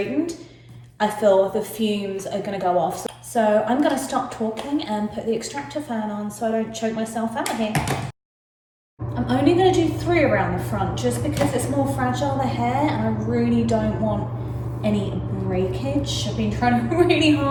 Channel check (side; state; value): both; identical; correlation 1.00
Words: I feel the fumes are going to go off. So I'm going to stop talking and put the extractor fan on so I don't choke myself out here. I'm I'm only going to do 3 around the front just because it's more fragile, the hair, and I really don't want any breakage. I've been trying really